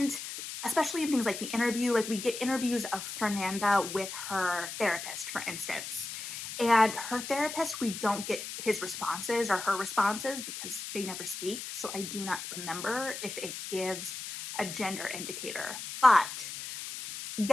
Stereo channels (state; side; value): noise; left; hiss, 8 dB below the sound